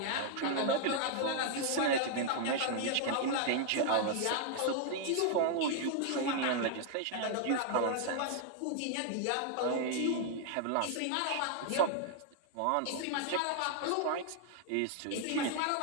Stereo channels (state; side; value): different; both; correlation 0.00